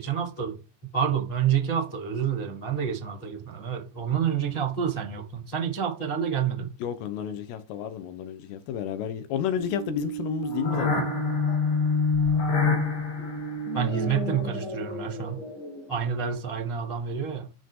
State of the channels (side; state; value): right; late; 15 ms